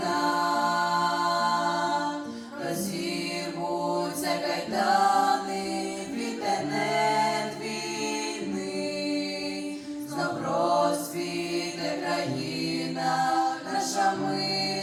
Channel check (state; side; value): identical; both; correlation 1.00